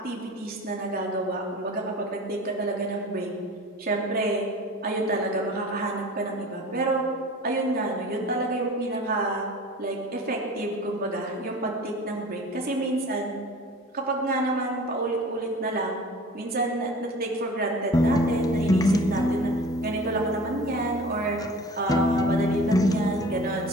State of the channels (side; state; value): both; normal; correlation 0.41